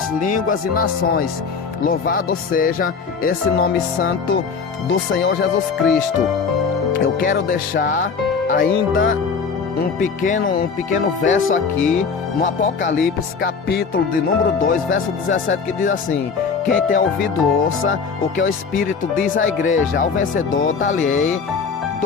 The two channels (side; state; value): right; quieter; 5.5 dB